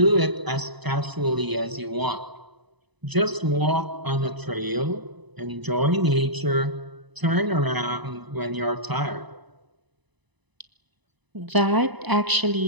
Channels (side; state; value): left; late; 1.0 ms